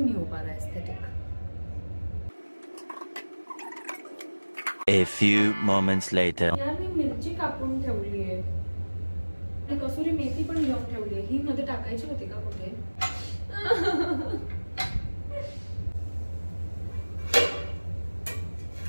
नहीं हो पा रहा aesthetic. A few moments later. यार मी मिरची कापून ठेवली आहे. कसुरी मेथी पण घेऊन ठेवली आहे. ही मध्ये टाकायची होती का कुठे.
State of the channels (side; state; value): both; inverted; correlation -1.00